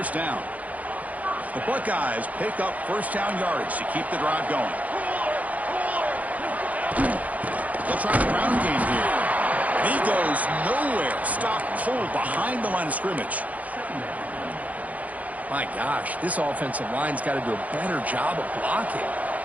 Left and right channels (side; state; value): left; late; 0.073 ms